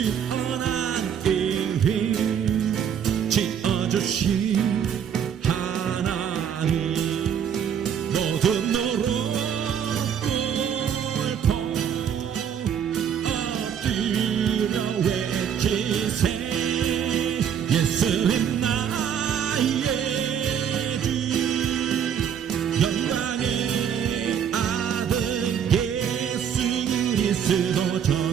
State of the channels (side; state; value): left; quieter; 8.3 dB